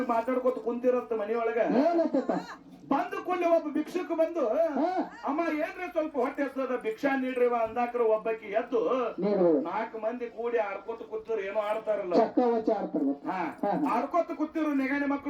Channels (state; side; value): identical; both; correlation 1.00